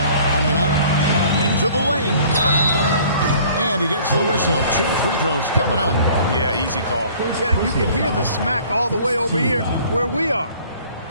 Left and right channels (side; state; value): both; inverted; correlation -0.52